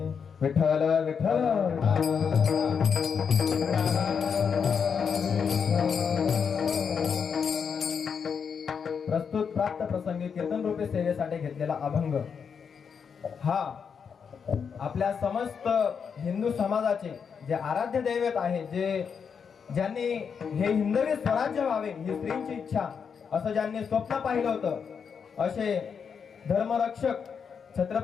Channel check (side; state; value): right; quieter; 6.5 dB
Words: विठ्ठल विठ्ठल प्रस्तुत प्राप्त प्रसंगी कीर्तन रूपे सेवेसाठी घेतलेला अभंग हा आपल्या समस्त हिंदू समाजाचे जे आराध्य दैवत आहे, ज्यांनी हे हिंदवी स्वराज्य व्हावे ही स्त्रींची इच्छा असं ज्यांनी स्वप्न पाहिलं होतं, असे धर्मरक्षक